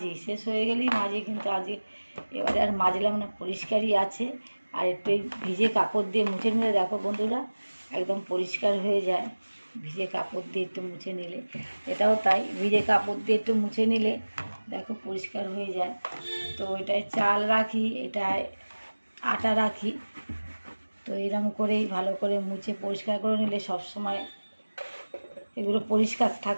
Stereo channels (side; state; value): both; inverted; correlation -1.00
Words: শেষ হয়ে গেলেই মাজি, কিন্তু আজকে এবারে আর মাজলাম না, পরিষ্কারই আছে। আর একটু ভিজে কাপড় দিয়ে মুছে নিলে দেখো বন্ধুরা একদম পরিষ্কার হয়ে যায়। ভিজে কাপড় দিয়ে একটু মুছে নিলে, এটাও তাই, ভিজে কাপড় দিয়ে একটু মুছে নিলে দেখো পরিষ্কার হয়ে যায়। তো এটায় চাল রাখি, এটায় আটা রাখি। তো এরকম করেই ভালো করে মুছে পরিষ্কার করে নিলে সব সময় এগুলো পরিষ্কার